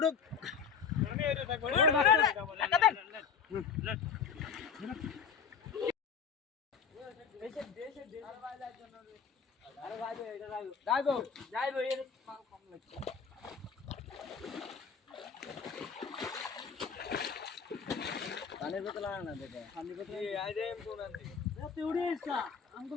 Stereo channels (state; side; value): quieter; right; 6.4 dB